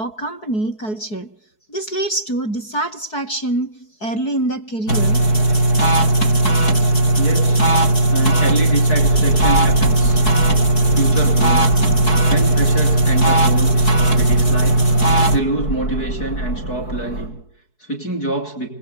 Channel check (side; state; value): right; late; 4.7 ms